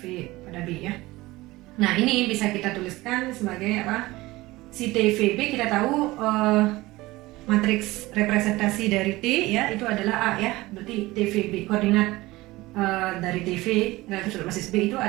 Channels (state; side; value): quieter; left; 19.5 dB